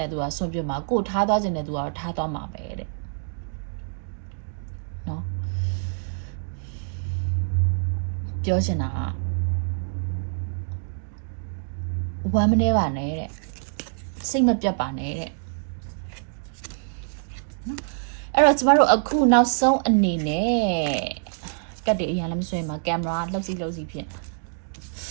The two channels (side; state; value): left; silent; digital silence